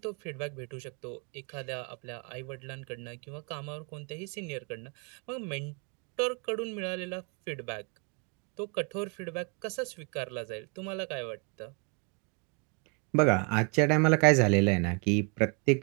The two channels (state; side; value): quieter; left; 34.5 dB